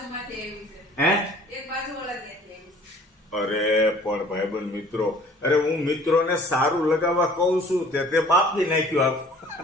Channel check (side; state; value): both; normal; correlation 0.52